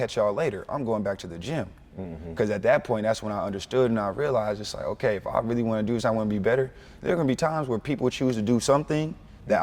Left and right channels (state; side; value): identical; both; correlation 1.00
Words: y'all later. I'm going back to the gym. Because at that point, that's when I understood and I realized it's like, okay, if I really want to do this, I want to be better, there are going to be times where people choose to do something that